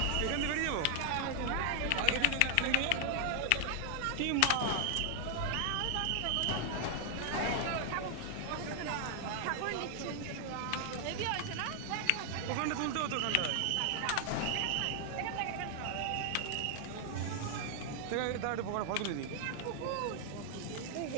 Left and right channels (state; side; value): different; both; correlation 0.00